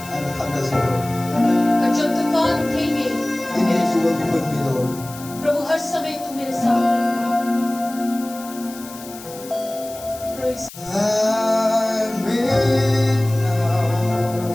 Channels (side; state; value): left; noise; hiss, 16 dB below the sound